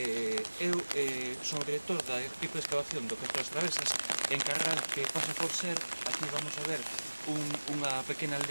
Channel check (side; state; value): both; inverted; correlation -1.00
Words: son o director da equipo de excavación do Castro das Travesas, encargado que pasa por ser, aquí vamos a ver, unha pequena